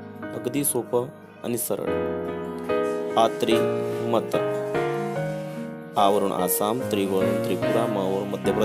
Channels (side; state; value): both; identical; correlation 1.00